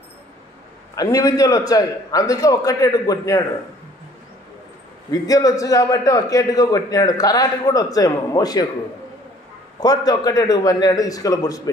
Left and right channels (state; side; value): normal; both; correlation 0.56